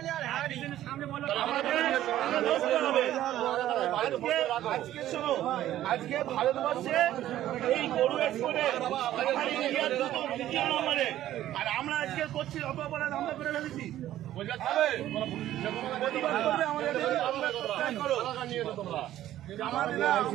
আজকে ভারতবর্ষে এই গরু এক্সপোর্টে দ্বিতীয় নম্বরে, আর আমরা আজকে করছি অপরাধ, আমরা করে ফেলেছি।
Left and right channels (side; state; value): left; quieter; 13.2 dB